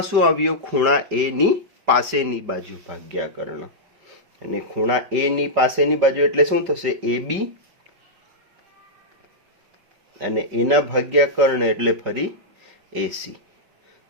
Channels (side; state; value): left; late; 5.1 ms